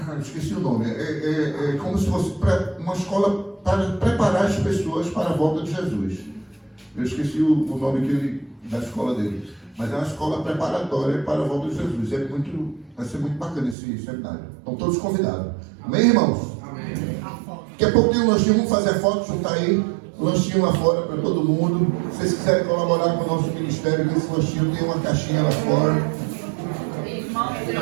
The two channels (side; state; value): left; drops out; at 13.8 s